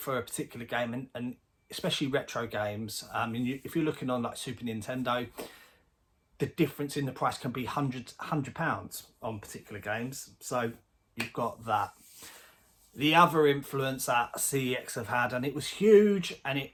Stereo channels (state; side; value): identical; both; correlation 1.00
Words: a particular game, and especially retro games. If you're looking on like Super Nintendo, the difference in the price can be £100 on particular games. So you've got that. The other influence that CEX have had, and it was huge, and